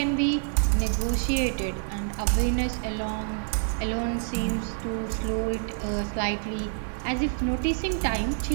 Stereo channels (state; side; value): silent; left; 55 dB below the other